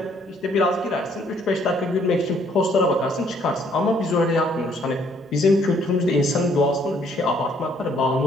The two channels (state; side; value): normal; both; correlation 0.65